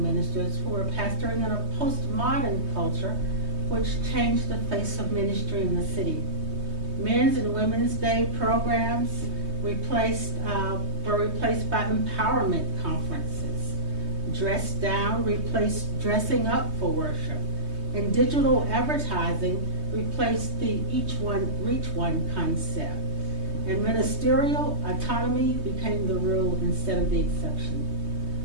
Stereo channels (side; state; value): left; late; 3.2 ms